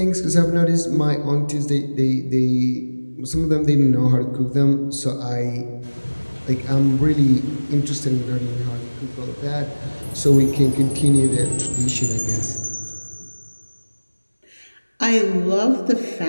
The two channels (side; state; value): both; inverted; correlation -1.00